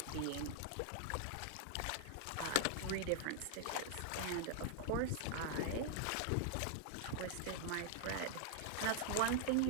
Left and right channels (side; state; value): both; different; correlation -0.01